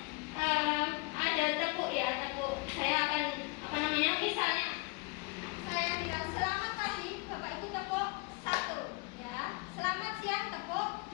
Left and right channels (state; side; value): quieter; right; 28.2 dB